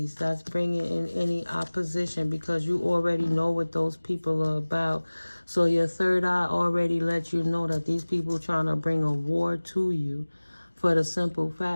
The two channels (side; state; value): both; inverted; correlation -1.00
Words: that's bringing in any opposition, because you already know what those people are about. So your third eye already lets you know that these people trying to bring a war to you, for the simple